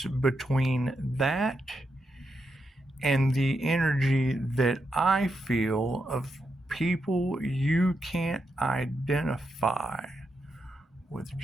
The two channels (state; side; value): normal; both; correlation 0.84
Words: between that and the energy that I feel of people you can't identify with